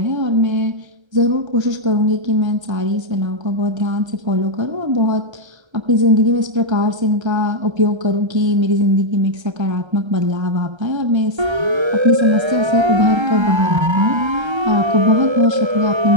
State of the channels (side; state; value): left; late; 1.3 ms